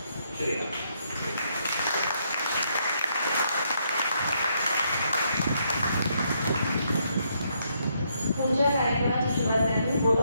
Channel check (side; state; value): both; inverted; correlation -0.75